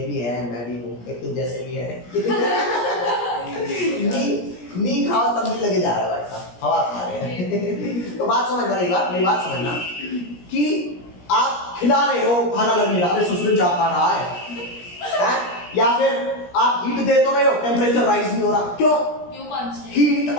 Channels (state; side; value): late; right; 17 ms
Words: भी है, मैं भी हूँ, एक तो जैसे भी है। नी खाओ तब भी लगे जा रहा है भाई साहब, हवा खा रहे हैं। तो बात समझना, मेरी बात समझना कि आप खिला रहे हो, खाना लग नहीं रहा, अरे ससुर जा खा रहा है, या फिर आप हीट दे तो रहे हो, टेम्परेचर राइज नहीं हो रहा, क्यों? हीट